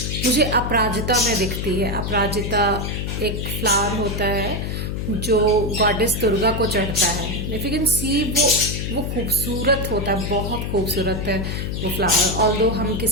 मुझे अपराजिता में दिखती है। अपराजिता एक फ्लावर होता है जो गॉडेस दुर्गा को चढ़ता है। इफ यू कैन सी, वो खूबसूरत होता है, बहुत खूबसूरत है वो फ्लावर। ऑल्दो हम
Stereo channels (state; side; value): noise; left; hum, 3 dB below the sound